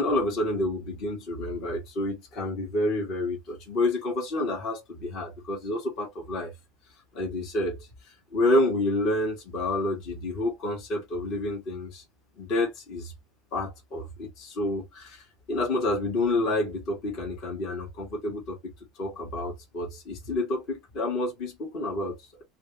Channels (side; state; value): both; normal; correlation 0.44